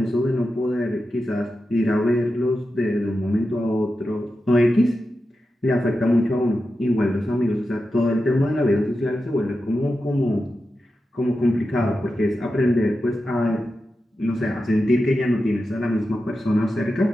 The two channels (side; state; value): both; normal; correlation 0.90